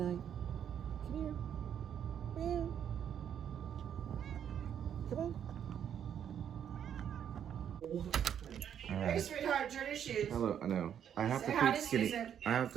Come here. Meow. Come on. All right. Hey, sweetheart, turn your shoes. Hello, I know. I have Say to hi feed to Skinny. Susan. I have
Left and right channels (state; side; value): quieter; left; 9.0 dB